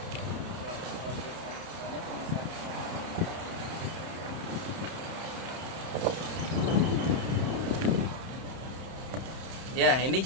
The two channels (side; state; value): left; late; 31 ms